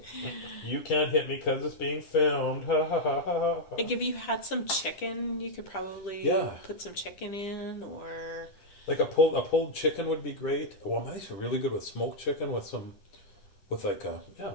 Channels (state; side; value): late; right; 10 ms